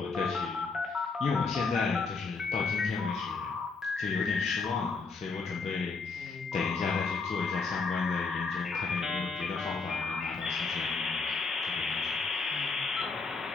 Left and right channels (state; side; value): quieter; right; 4.4 dB